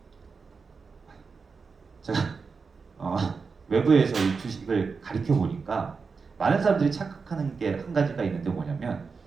외부에서 이 주식을 가르쳐 보니까 많은 사람들이 착각하는 게 한 가지가 있는데 뭐냐면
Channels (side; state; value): left; quieter; 5.0 dB